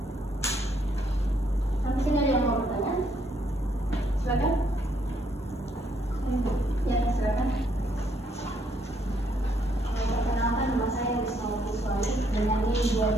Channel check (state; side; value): normal; both; correlation 0.71